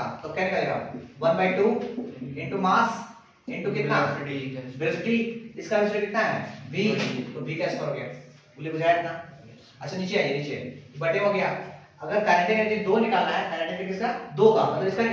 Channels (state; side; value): identical; both; correlation 1.00